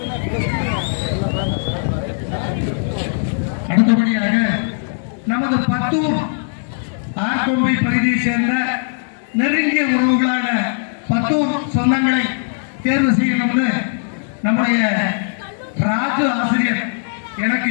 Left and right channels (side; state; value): right; silent; digital silence